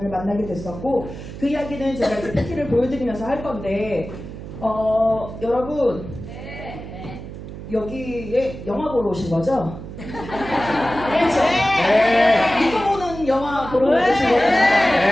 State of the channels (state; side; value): noise; right; hum, 11 dB below the sound